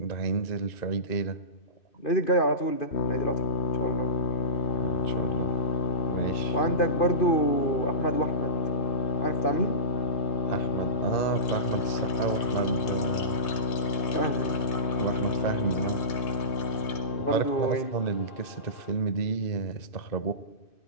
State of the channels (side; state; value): right; late; 2.6 ms